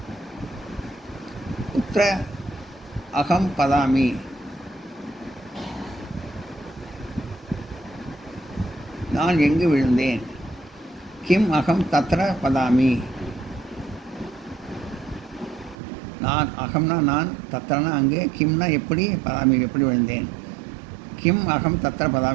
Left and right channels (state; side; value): drops out; left; at 15.8 s